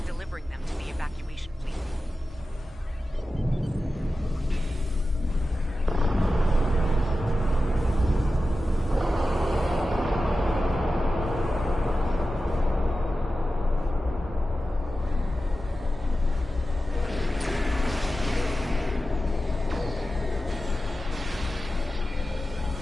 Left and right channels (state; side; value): normal; both; correlation 0.93